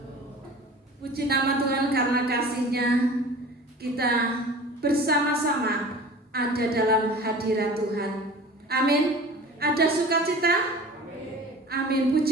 Puji nama Tuhan karena kasih-Nya kita bersama-sama ada dalam hadirat Tuhan. Amin. Ada sukacita? Amin.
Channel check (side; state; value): both; normal; correlation 0.41